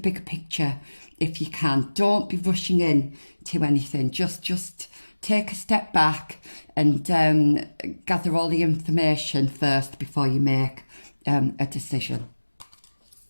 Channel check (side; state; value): both; inverted; correlation -1.00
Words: picture if you can. Don't be rushing in to anything. Just take a step back and gather all the information first before you make a decision.